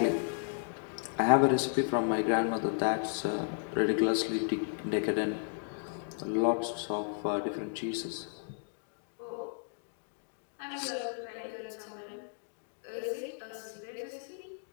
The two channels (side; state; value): right; silent; digital silence